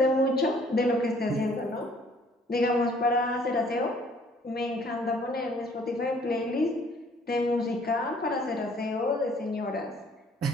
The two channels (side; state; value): both; normal; correlation 0.59